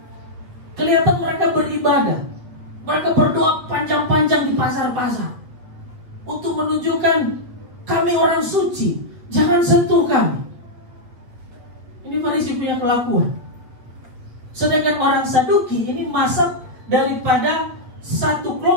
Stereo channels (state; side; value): late; left; 8.2 ms